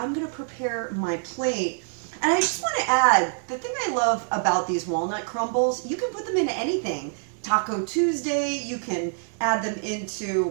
gonna prepare my plate. And I just wanna add, the thing I love about these walnut crumbles, you can put them into anything. Taco Tuesday, you can add them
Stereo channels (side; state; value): left; silent; 61 dB below the other